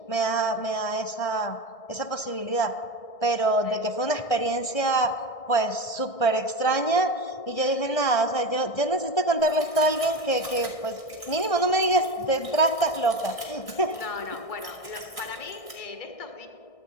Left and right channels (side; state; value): right; late; 1.6 ms